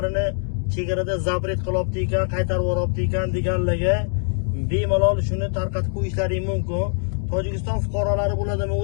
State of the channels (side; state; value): right; silent; 63 dB below the other